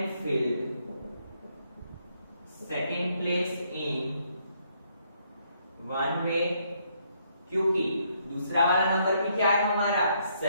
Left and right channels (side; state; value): both; inverted; correlation -0.72